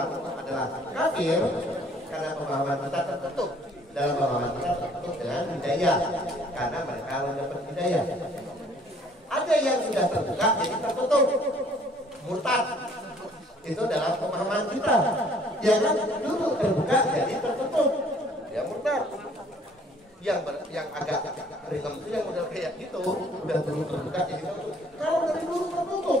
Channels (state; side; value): normal; both; correlation 0.58